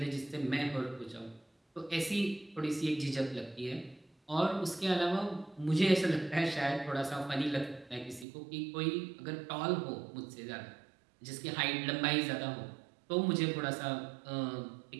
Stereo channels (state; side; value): drops out; left; at 8.2 s